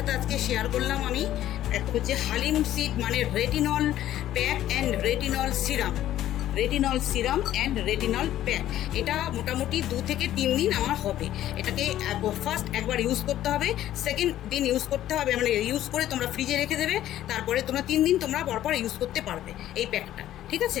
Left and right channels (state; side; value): quieter; right; 12.9 dB